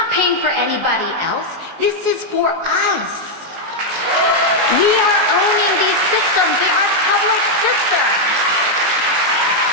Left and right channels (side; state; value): left; late; 19 ms